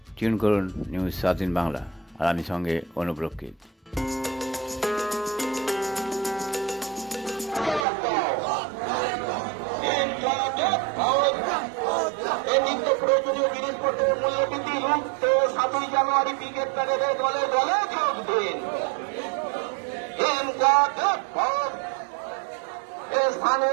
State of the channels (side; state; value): left; drops out; at 7.9 s